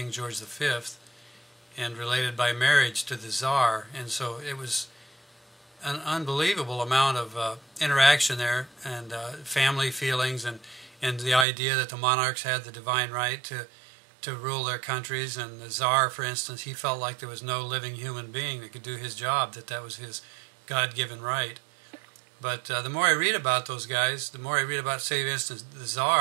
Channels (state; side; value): drops out; left; at 11.5 s